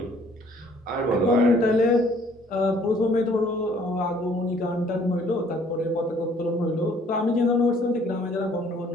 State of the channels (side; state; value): both; normal; correlation 0.59